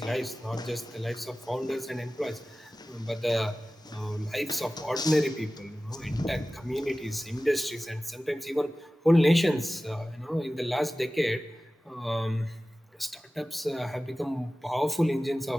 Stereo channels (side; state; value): both; normal; correlation 0.96